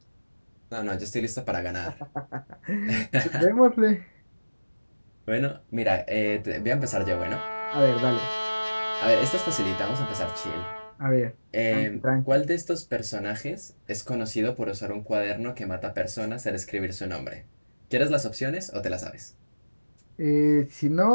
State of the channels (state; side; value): inverted; both; correlation -1.00